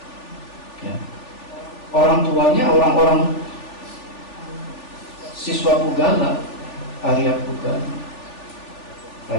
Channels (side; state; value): right; late; 3.4 ms